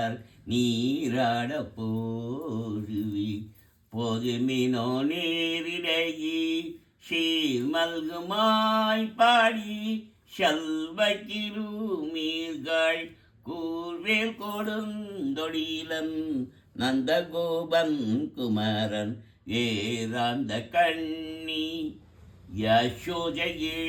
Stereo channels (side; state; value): both; identical; correlation 1.00